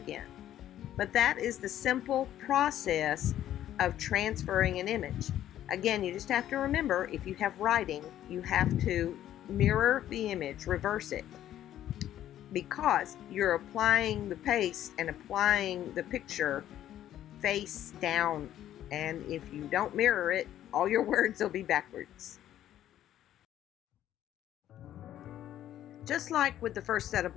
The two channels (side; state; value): right; quieter; 12.0 dB